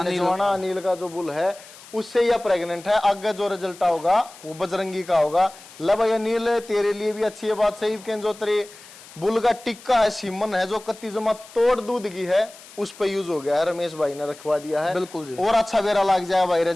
जवाना अनिल का जो बुल है उससे यह प्रेग्नेंट है। आगे जो रिजल्ट होगा वो बजरंगी का होगा। ला भाई अनिल तेरे लिए भी अच्छी है बात सही के जो तेरे बुल का टिक्का है सीमन है जो कत्ती जमा तोड़ दूध की है उस पे यूज हो गया है, रमेश भाई ने रखवा दिया है। बिल्कुल जी। और अच्छा बेरा लग जाए भाई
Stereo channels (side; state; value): left; noise; hiss, 20 dB below the sound